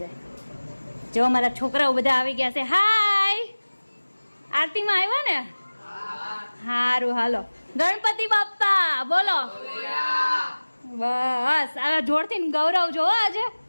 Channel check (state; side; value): inverted; both; correlation -1.00